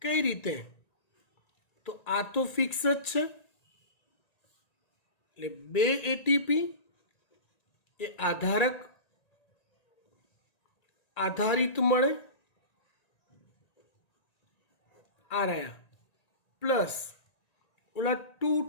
કઈ રીતે? તો આ તો ફિક્સ જ છે, એટલે 2 એટીપી એ આધારિત મળે, આ રહ્યા, પ્લસ ઓલા 2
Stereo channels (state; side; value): late; right; 1.9 ms